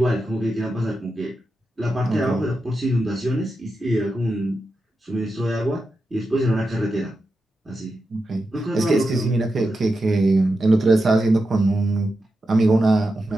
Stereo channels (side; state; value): both; normal; correlation 0.89